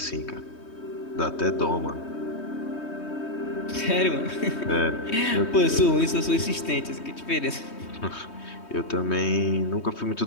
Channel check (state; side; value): late; right; 3.2 ms